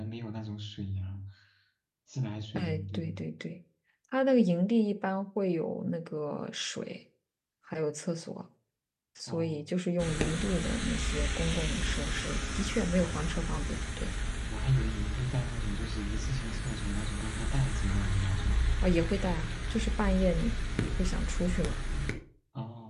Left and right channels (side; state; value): both; identical; correlation 1.00